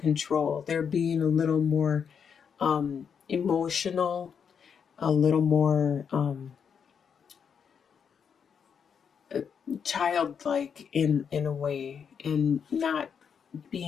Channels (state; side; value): quieter; right; 7.0 dB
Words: They're being a little more emotional, a little more childlike in a way, and not